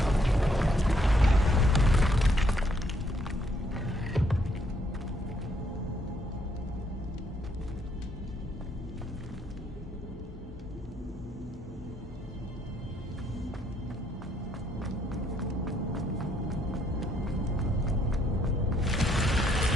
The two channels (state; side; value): normal; both; correlation 0.70